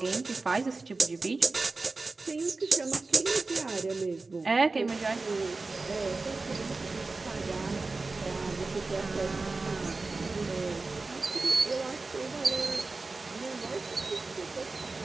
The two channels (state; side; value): quieter; left; 3.7 dB